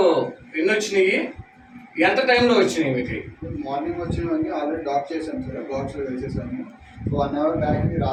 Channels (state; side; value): identical; both; correlation 1.00